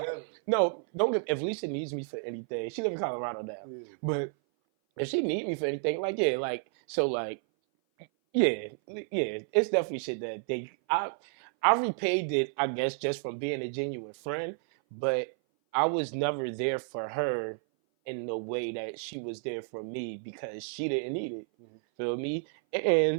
No, don't give. If Lisa needs me for anything, she live in Colorado now. Yeah. But if she need me for anything, it's definitely shit that I repaid it, I guess, just from being a genuine friend. But I was never there for her in the way that she was there for me because she didn't need it. Mm-hmm. Feel me?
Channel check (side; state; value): left; silent; 56 dB below the other